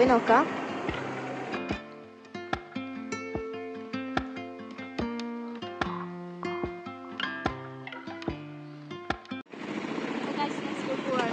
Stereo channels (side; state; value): both; identical; correlation 1.00